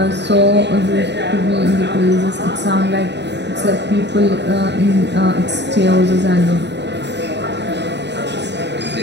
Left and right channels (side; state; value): left; late; 0.50 ms